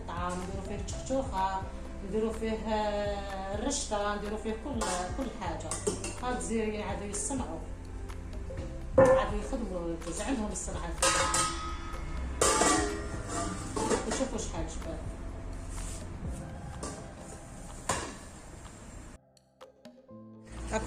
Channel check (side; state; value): both; identical; correlation 1.00